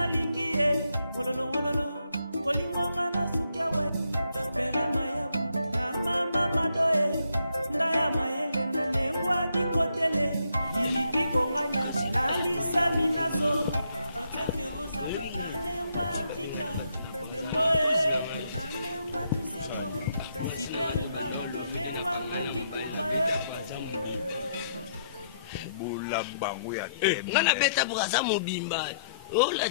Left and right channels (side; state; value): both; inverted; correlation -0.74